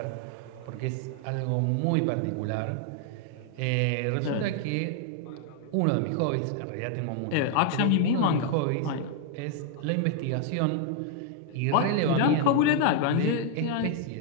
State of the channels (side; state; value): both; different; correlation 0.00